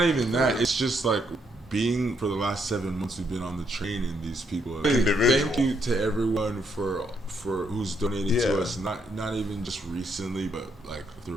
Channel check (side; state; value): both; normal; correlation 0.75